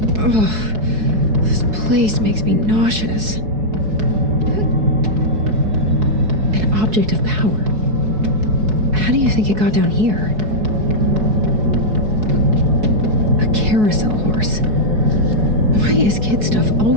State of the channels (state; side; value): late; left; 4.7 ms